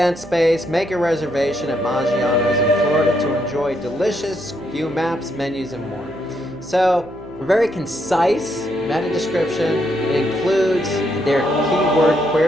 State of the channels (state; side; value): noise; right; hum, 18 dB below the sound